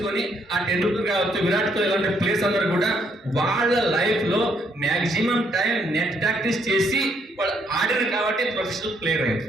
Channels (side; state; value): both; normal; correlation 0.71